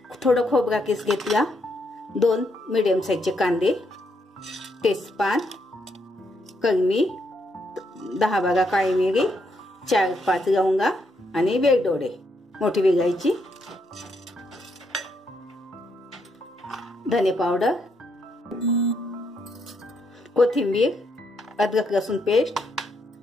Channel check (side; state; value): both; normal; correlation 0.76